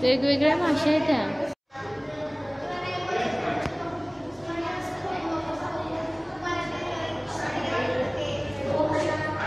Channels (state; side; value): identical; both; correlation 1.00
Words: वेगवेगळ्या माशा आहेत त्या.